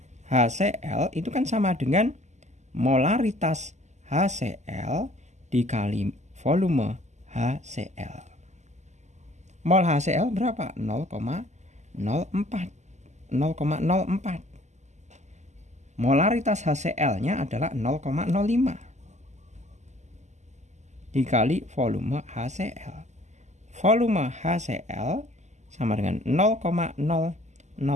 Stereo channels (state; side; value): late; left; 0.33 ms